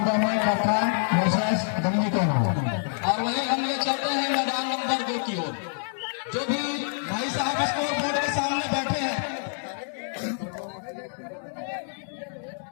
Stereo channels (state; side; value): silent; right; digital silence